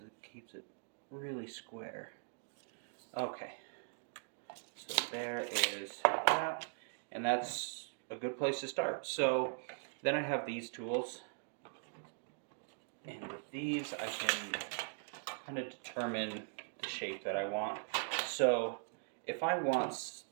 It keeps it really square. Okay. So there is that. And that's a good place to start. So then I have these tools. And with these, I can kind of determine the shape that I want. So if I want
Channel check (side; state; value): left; silent; digital silence